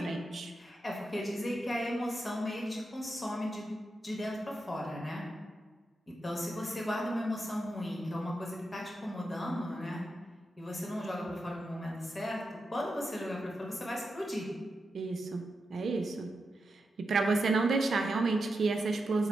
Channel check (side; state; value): both; normal; correlation 0.87